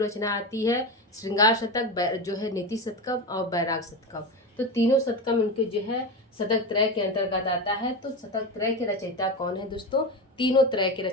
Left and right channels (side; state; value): both; normal; correlation 0.20